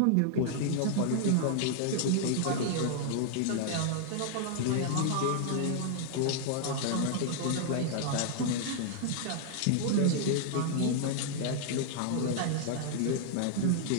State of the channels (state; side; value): different; both; correlation -0.01